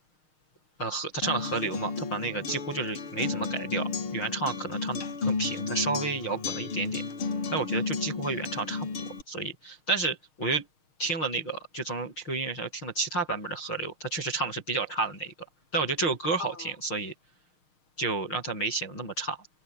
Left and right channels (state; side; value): late; right; 6.4 ms